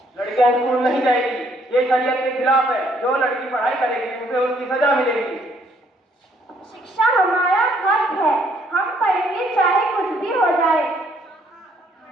लड़कियां स्कूल नहीं जाएगी, ये शरीयत के खिलाफ है। जो लड़की पढ़ाई करेगी उसे उसकी सजा मिलेगी। शिक्षा हमारा हक है, हम पढ़ेंगे चाहे कुछ भी हो जाए।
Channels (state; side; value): normal; both; correlation 0.67